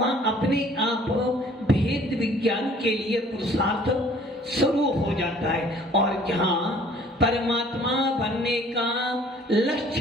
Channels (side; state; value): both; normal; correlation 0.54